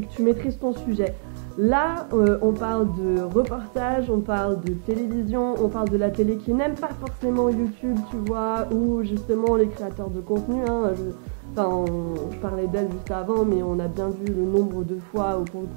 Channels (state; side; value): silent; left; digital silence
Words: tu maîtrises ton sujet. Là, on parle de reportage, on parle de télévision, on parle de la télé qui n'aime pas forcément YouTube, tu vois, ou justement les créateurs de contenu, hein, je parlais d'elle juste avant, mais on a bien vu le nombre de fois où pour le